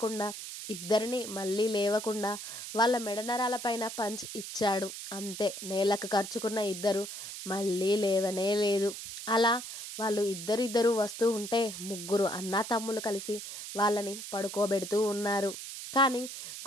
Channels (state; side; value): noise; right; hiss, 9 dB below the sound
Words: ఇద్దరిని మళ్ళీ లేవకుండా వాళ్ళ మెడనరాలపైన పంచ్ ఇచ్చాడు. అంతే, నేలకు ఖర్చుకున్న ఇద్దరు మళ్ళీ లేవనే లేదు. అలా వాళ్ళు ఇద్దరిద్దరు వస్తూ ఉంటే ముగ్గురు అన్నా తమ్ములు కలిసి వాళ్ళని పడుకోబెడుతూ ఉన్నారు. కానీ